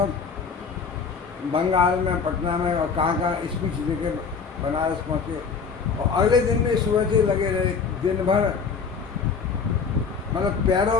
बंगाल में, पटना में और कहाँ स्पीच देके बनारस पहुँचे, और अगले दिन में सुबह से लगे रहे दिन भर। मतलब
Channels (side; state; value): right; quieter; 5.6 dB